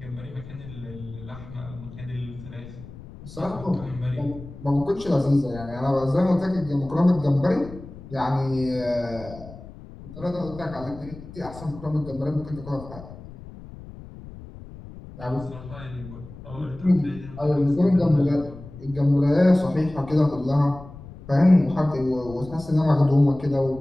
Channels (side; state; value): left; noise; rumble, 15 dB below the sound